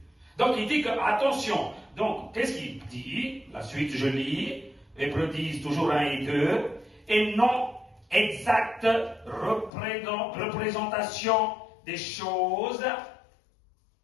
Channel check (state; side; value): drops out; right; at 9.7 s